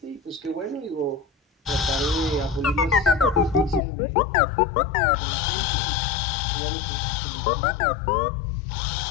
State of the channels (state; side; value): drops out; right; at 3.8 s